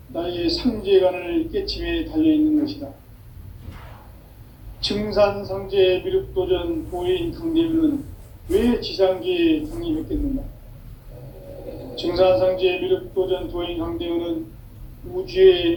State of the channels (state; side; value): identical; both; correlation 1.00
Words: 나의 상제관을 깨침에 달려있는 것이다. 증산상제 미륵도전 도인 강대우는 왜 지상계에 강림했겠는가? 증산상제 미륵도전 도인 강대우는